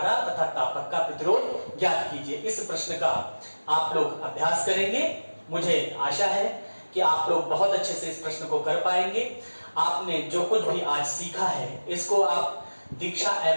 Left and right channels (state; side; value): inverted; both; correlation -1.00